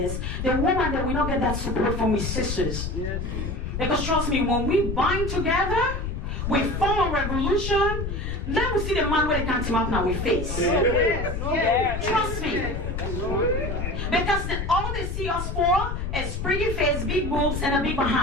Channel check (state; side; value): noise; left; rumble, 3 dB below the sound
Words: the woman that we don't get that support from his sisters. Because trust me, when we bind together, we form a revolution, then we see the man where they can't team up now with face. Trust me. Because all they see us for is pretty face, big boobs, and a big